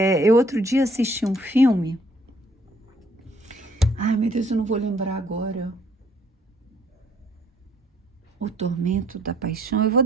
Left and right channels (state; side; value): normal; both; correlation 0.63